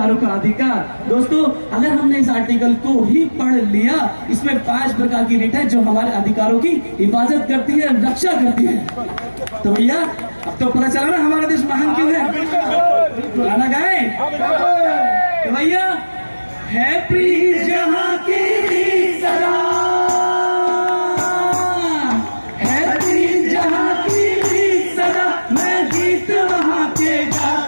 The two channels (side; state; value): both; inverted; correlation -1.00